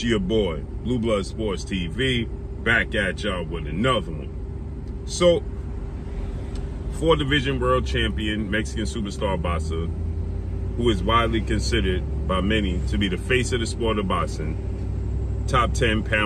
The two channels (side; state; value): both; identical; correlation 1.00